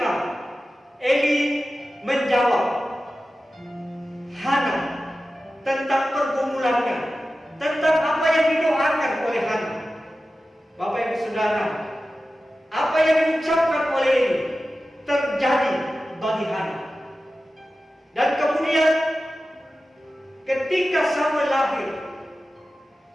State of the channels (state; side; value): normal; both; correlation 0.94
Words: Eli menjawab Hana tentang pergumulannya, tentang apa yang didoakan oleh Hana. Bapak Ibu Saudara, apa yang diucapkan oleh Eli terjadi bagi Hana. Dan kemudian ketika Samuel lahir,